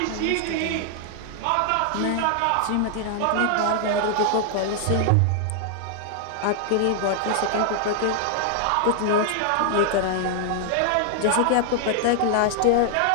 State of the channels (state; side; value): different; both; correlation 0.00